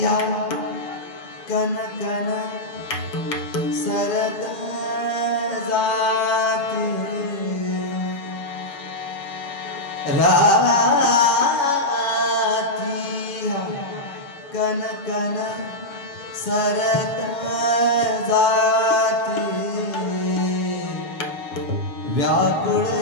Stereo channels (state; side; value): late; right; 7.0 ms